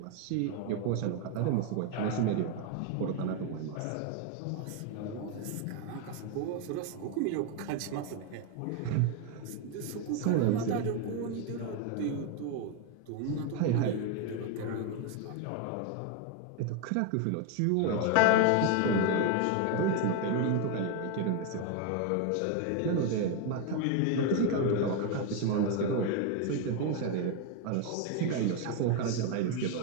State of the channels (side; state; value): both; different; correlation 0.01